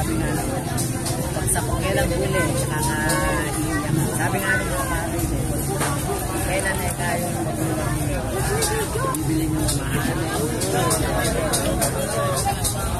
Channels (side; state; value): both; identical; correlation 1.00